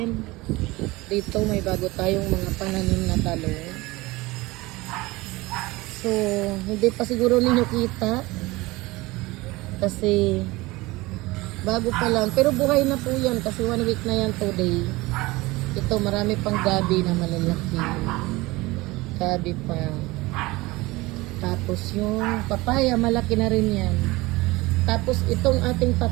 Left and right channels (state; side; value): quieter; left; 21.2 dB